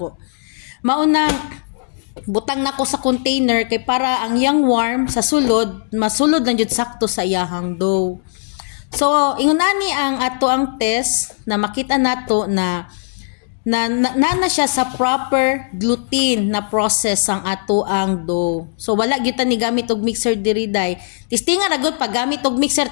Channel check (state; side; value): silent; right; digital silence